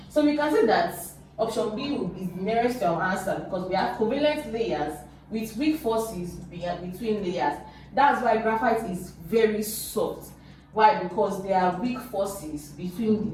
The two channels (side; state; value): both; identical; correlation 1.00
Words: So we can say that option B is the nearest to our answer, because we have covalent layers with weak forces between layers. That's why graphite is very soft. Why? Because there are weak forces between